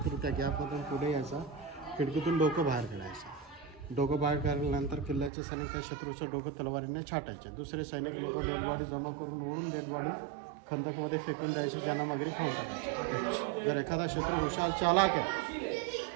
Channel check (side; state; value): left; drops out; at 5.3 s